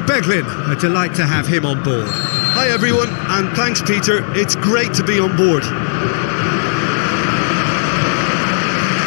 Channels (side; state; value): right; silent; digital silence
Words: Beglin. A delight to have him on board. Hi everyone, and thanks Peter, it's great to be on board.